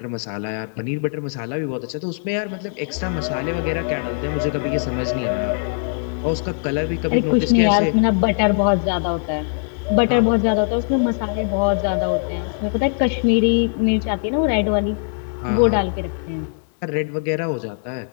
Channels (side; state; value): right; silent; digital silence